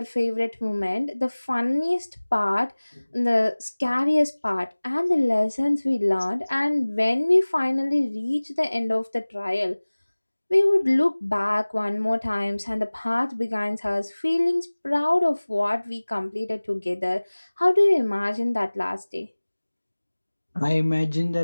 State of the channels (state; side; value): inverted; both; correlation -1.00